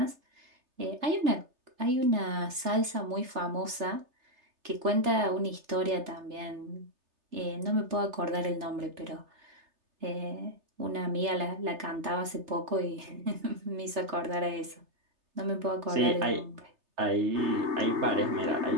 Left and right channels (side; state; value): left; late; 3.3 ms